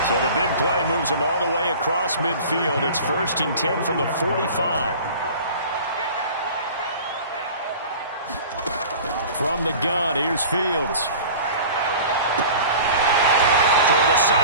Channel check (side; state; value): both; inverted; correlation -0.40